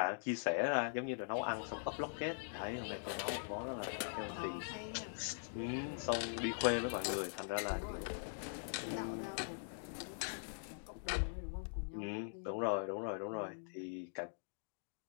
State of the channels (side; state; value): right; silent; digital silence